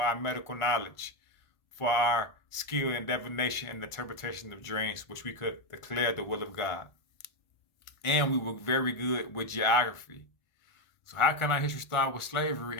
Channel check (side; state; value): right; late; 1.4 ms